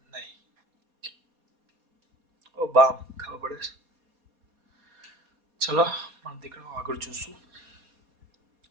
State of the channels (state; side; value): late; left; 4.2 ms